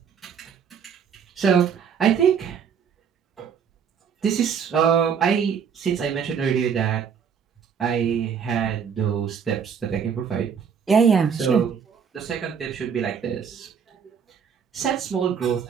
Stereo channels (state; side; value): quieter; left; 7.1 dB